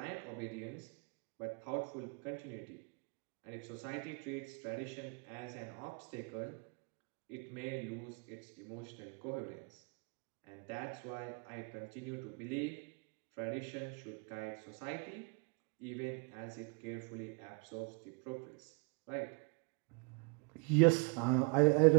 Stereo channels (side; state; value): left; quieter; 33.5 dB